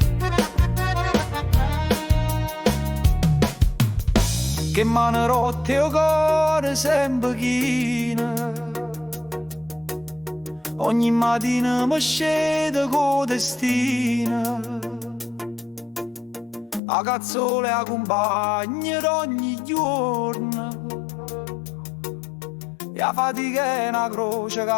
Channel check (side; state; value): right; drops out; at 16.8 s